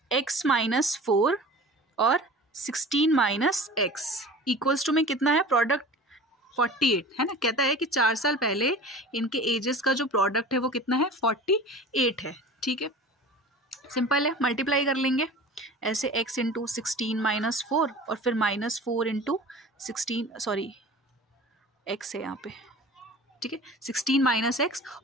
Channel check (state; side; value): normal; both; correlation 0.39